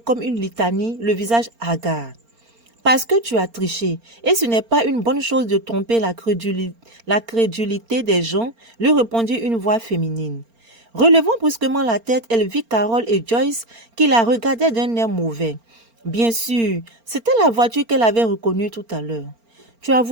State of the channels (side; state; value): left; late; 4.4 ms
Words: une litanie, le visage hagard. Parce que tu as triché, et ce n'est pas une bonne chose de tromper la crédulité des gens, lui répondit une voix féminine. Relevant brusquement la tête, elle vit Carol et Joyce qui la regardaient d'un air mauvais. Bien sûr, c'était la voiture qu'elle avait reconnue tout à l'heure. Tu as